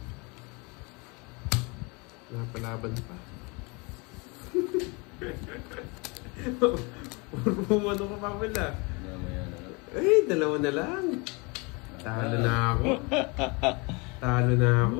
Napalaban pa. Umano ka pa pala. Mamaya na lang. Eh, dalawa na lang. Talo na ako. Talo na ako.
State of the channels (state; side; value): quieter; right; 28.9 dB